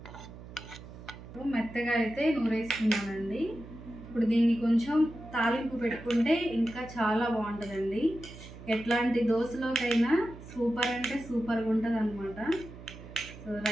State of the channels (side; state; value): right; noise; hum, 15 dB below the sound